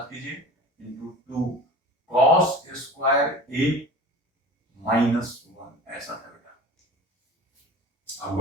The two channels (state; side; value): normal; both; correlation 0.37